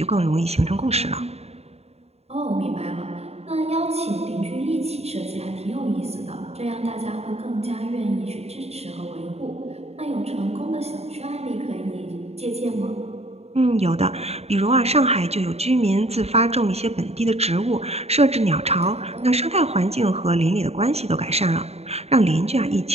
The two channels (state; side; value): late; left; 0.30 ms